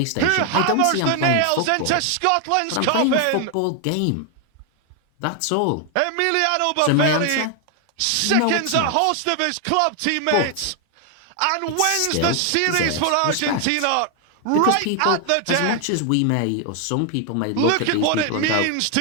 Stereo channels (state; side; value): different; both; correlation 0.00